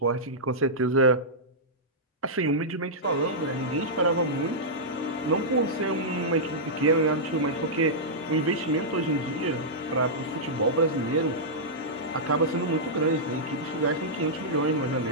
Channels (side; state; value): both; normal; correlation -0.12